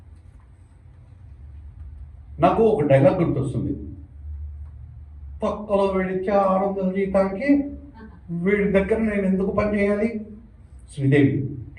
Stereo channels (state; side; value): identical; both; correlation 1.00